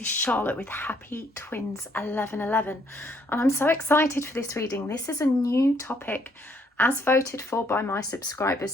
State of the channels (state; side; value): normal; both; correlation 0.68